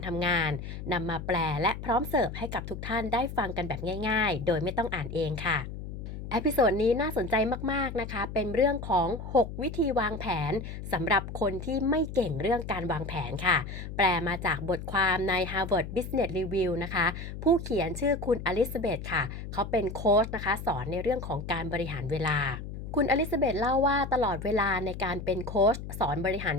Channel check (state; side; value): noise; left; hum, 8 dB below the sound